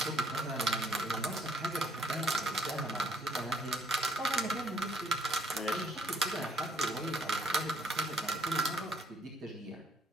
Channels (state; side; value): normal; both; correlation 0.65